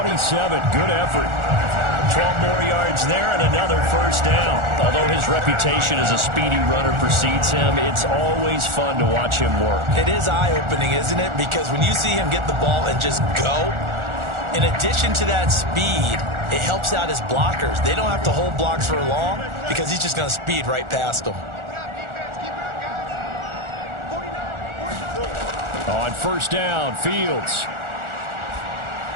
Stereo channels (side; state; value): left; late; 1.4 ms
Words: Good effort. 12 more yards there and another 1st down. Although his reputation as a speedy runner precedes him, it's always fun to watch him work. It is eye-opening, isn't it? Because when you see him get the ball and just go, in addition to that speed, it helps out his blockers. They don't have to hold blocks for long because he's just going to speed right past them. On 1st down, Fields.